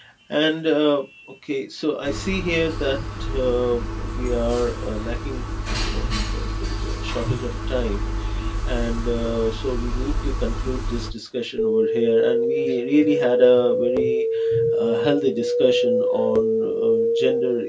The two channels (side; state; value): both; identical; correlation 1.00